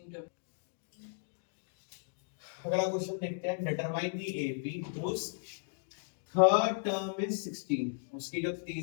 टर्म। अगला क्वेश्चन देखते हैं, determine the AP whose third term is 16, उसकी जो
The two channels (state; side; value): silent; right; digital silence